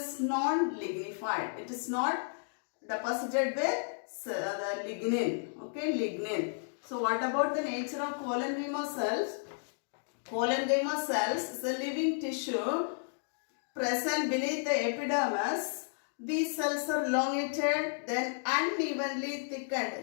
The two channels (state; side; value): silent; right; digital silence